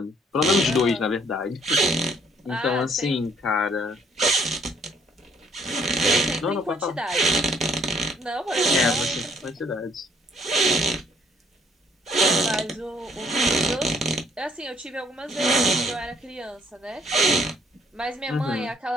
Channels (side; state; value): both; normal; correlation 0.65